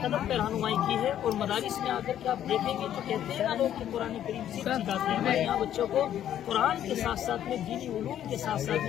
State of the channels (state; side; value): quieter; right; 10.9 dB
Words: قدم پہ رہنمائی کی ہے. اور مدارس میں آ کر کے آپ دیکھیں گے تو کہتے ہیں نا لوگ کہ قرآن کریم سکھاتے ہیں. ہمارے یہاں بچوں کو قرآن کے ساتھ ساتھ میں دینی علوم کے ساتھ ساتھ